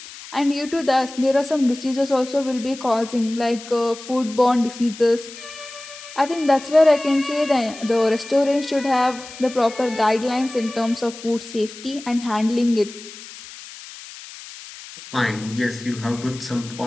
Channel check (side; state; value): left; noise; hiss, 15 dB below the sound